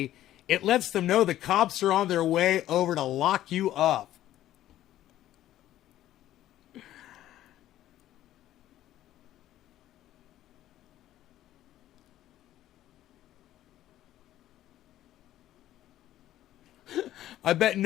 it lets them know the cops are on their way over to lock you up. I bet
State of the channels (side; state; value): right; quieter; 13.3 dB